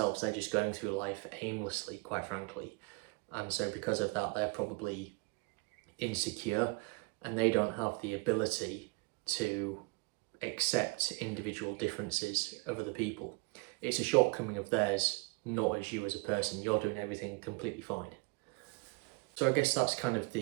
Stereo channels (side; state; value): left; quieter; 29.0 dB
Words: They're just going through life aimlessly, quite frankly. And so because of that, they're probably insecure and they don't have the ability to accept individual differences of other people. It's a shortcoming of theirs, not as you as a person. You're doing everything completely fine. So I guess that's kind of